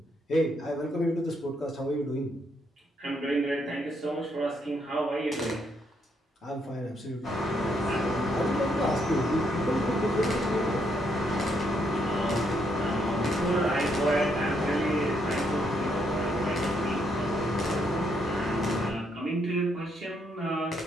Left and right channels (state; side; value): normal; both; correlation 0.74